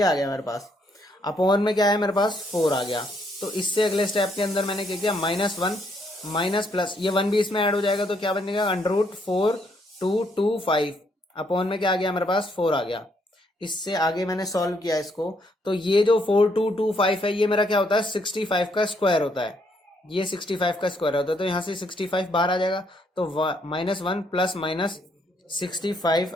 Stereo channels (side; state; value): both; normal; correlation 0.72